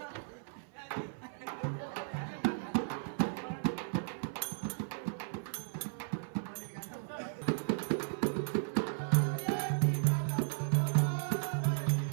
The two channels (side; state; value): left; silent; 54 dB below the other